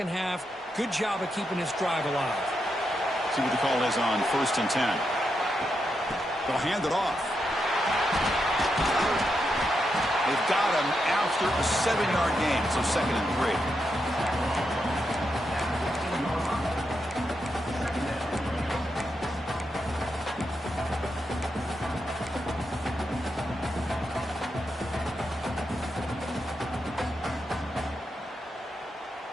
half. Good job of keeping this drive alive. See what the call is on 1st and 10. They'll hand it off. They've got him after a 7-yard gain, so 2nd and 3.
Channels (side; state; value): both; normal; correlation 0.84